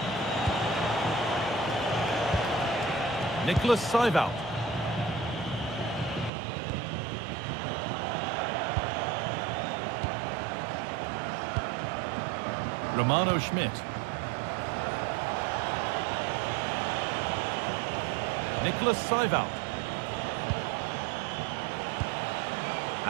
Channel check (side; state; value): left; drops out; at 6.3 s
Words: Nicholas Seiwald. Romano Schmidt. Nicholas Seiwald.